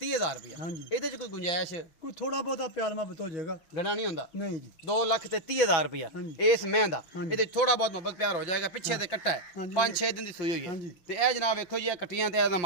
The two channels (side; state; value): right; late; 6.2 ms